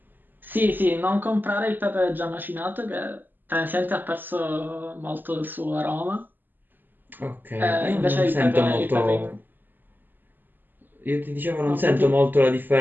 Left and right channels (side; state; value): left; late; 0.090 ms